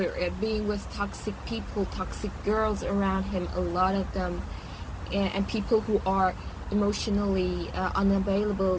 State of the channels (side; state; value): both; identical; correlation 1.00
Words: being with toxic people, toxic girls around him, a lot of them, and people who are emotionally unavailable